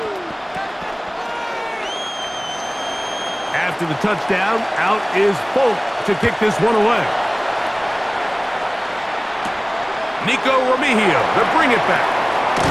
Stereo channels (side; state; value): both; identical; correlation 1.00